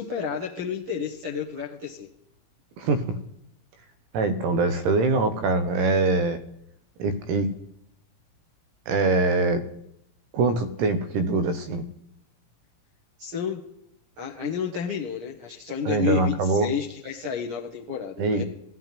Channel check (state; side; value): late; left; 18 ms